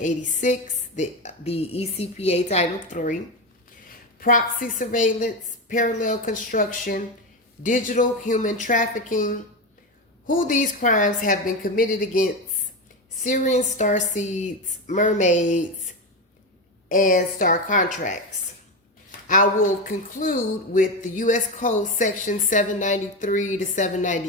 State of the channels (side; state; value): both; normal; correlation 0.16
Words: the ECPA Title III. Proxy surveillance, parallel construction, digital human trafficking. Who these crimes have been committed against Syrian starseeds, mermaids, and star contracts. I will conclude with the U.S. Code Section 793 to